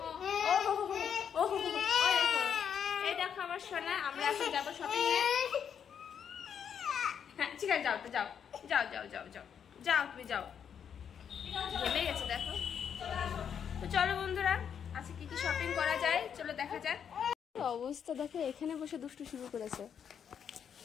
এই দেখো আমার সোনা। আমরা এখন যাবো শপিং এ। হ্যাঁ ঠিক আছে, যাও তো যাও যাও যাও যাও যাও যাও, তুমি যাও। ঘেমে গেছে দেখো। তো চলো বন্ধুরা, আজকে কি কি শপিং করা যায় চলো দেখা যাক। অবস্থা দেখো, এখানে বসে দুষ্টু শুরু করেছে।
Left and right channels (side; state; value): right; quieter; 7.9 dB